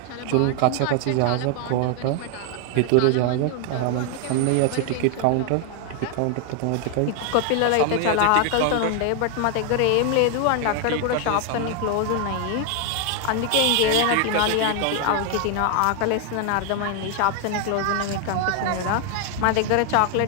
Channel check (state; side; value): different; both; correlation 0.00